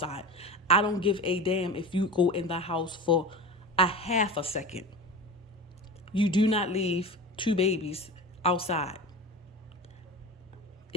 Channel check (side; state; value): both; normal; correlation 0.30